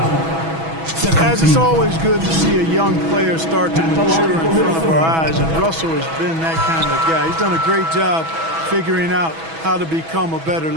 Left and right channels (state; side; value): late; left; 6.1 ms